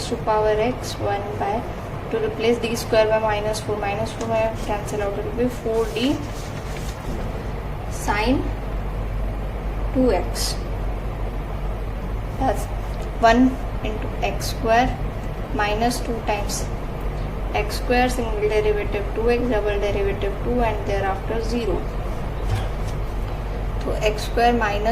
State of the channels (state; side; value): identical; both; correlation 1.00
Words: to power x 1 by, to replace d square by minus 4 will cancel out, it will be 4d sine 2x. That's 1 into x square minus 2 times x square, single derivative 2x, double derivative 2, and thereafter 0. So x square